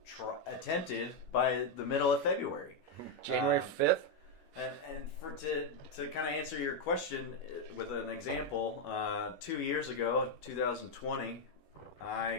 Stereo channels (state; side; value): late; right; 10 ms